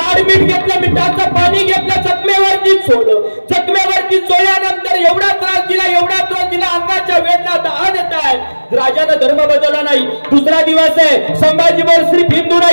मीठ घेतलं, मिठाचं पाणी घेतलं, जखमेवरती सोडलं. जखमेवरती चोळल्यानंतर एवढा त्रास दिला, अंगाच्या वेदना दहा देत आहे. राजानं धर्म बदलला नाही. दुसरा दिवस आहे. संभाजी बोल सिर्फ हिंदू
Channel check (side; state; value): both; inverted; correlation -1.00